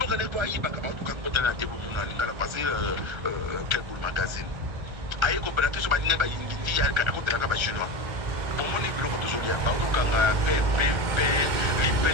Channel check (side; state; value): left; late; 1.3 ms